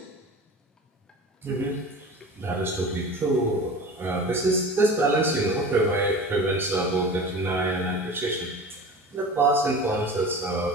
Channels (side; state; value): both; normal; correlation 0.36